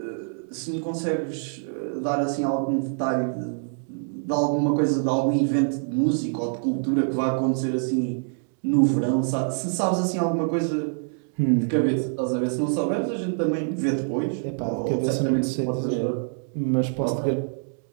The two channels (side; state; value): left; silent; 62 dB below the other